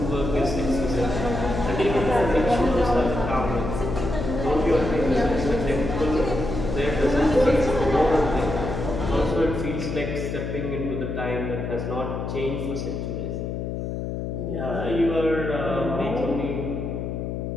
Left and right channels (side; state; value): left; noise; hum, 4 dB below the sound